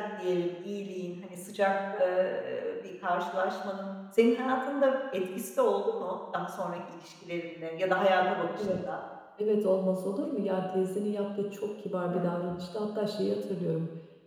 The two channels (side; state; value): both; identical; correlation 1.00